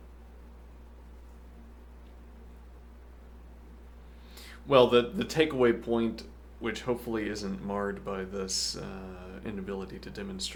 Well, the takeaway point, which hopefully isn't marred by this inability to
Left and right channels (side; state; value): both; identical; correlation 1.00